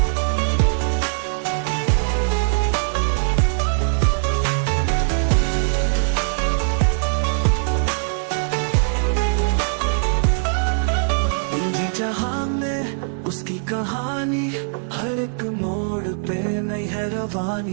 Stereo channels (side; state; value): left; silent; digital silence